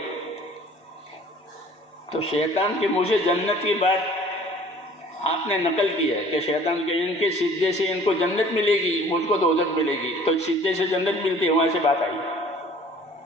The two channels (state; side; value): normal; both; correlation 0.51